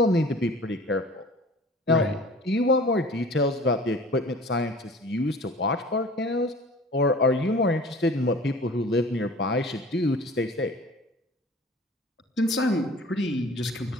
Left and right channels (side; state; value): both; normal; correlation 0.44